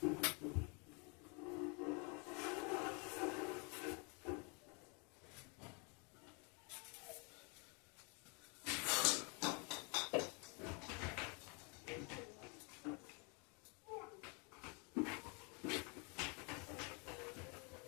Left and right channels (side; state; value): right; quieter; 34.1 dB